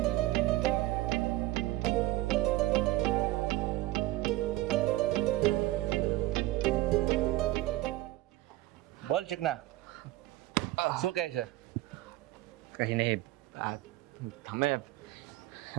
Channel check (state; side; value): quieter; left; 17.2 dB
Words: બોલ ચિકના, શું કહે છે? કંઈ નહીં, તમે